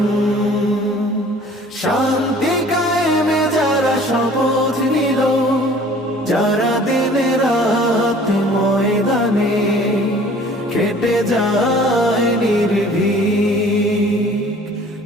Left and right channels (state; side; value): normal; both; correlation 0.51